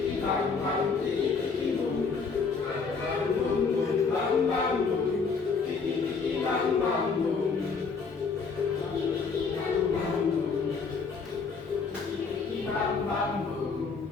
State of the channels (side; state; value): right; quieter; 5.0 dB